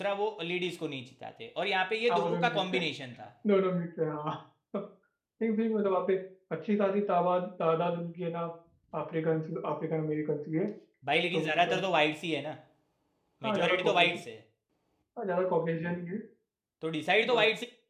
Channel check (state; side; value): identical; both; correlation 1.00